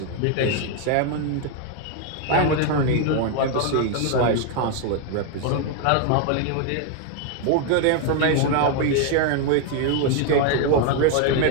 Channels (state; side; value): different; both; correlation 0.01